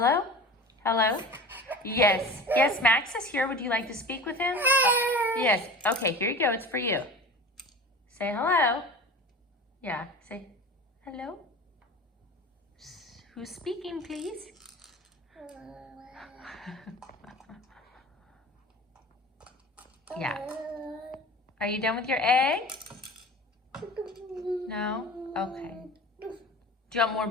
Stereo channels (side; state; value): both; normal; correlation 0.35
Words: Hello? Yes. Yes, Max is here. Would you like to speak with him? Yes. Okay, here you go. It's for you. Say hello. Yeah, say hello. Who's speaking, please? Yeah. Are you done with your egg? No? Okay. Do you want more